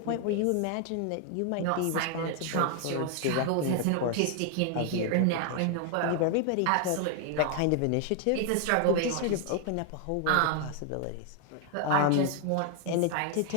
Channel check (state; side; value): different; both; correlation 0.00